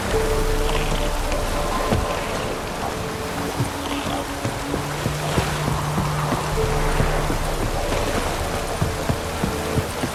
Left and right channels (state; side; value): identical; both; correlation 1.00